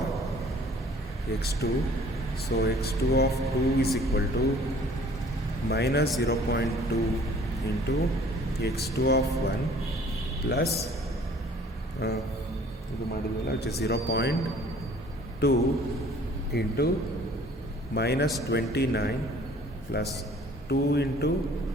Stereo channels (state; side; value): normal; both; correlation 0.53